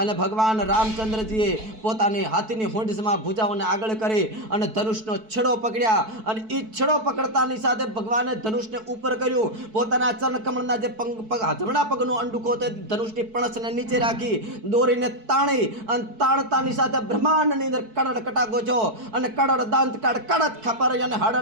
ભગવાન રામચંદ્રજીએ પોતાની હાથીની હોંડમાં ભુજાઓને આગળ કરી અને ધનુષનો છેડો પકડ્યા અને એ છેડો પકડતાની સાથે ભગવાને ધનુષને ઉપર કર્યું. પોતાના ચરણ કમળના જે જમણા પગનો અંડુકો તે ધનુષની પણસને નીચે રાખી દોરીને તાણી અને તાણતાની સાથે બ્રહ્માંડની અંદર કડડ કટાકો છો અને કડડ દાંત કાઢ કડદ ખપર અને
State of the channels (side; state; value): left; late; 4.6 ms